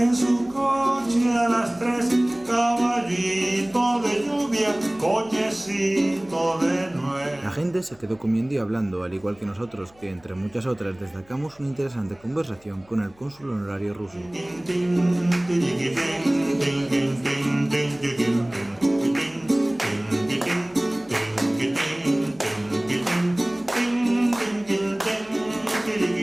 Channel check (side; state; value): left; noise; hum, 29 dB below the sound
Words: su coche a las 3. Caballito de lluvia, cochecito de nuez. La gente se quedó comiendo y hablando, al igual que nosotros, que entre muchas otras destacamos una interesante conversación con el cónsul honorario ruso.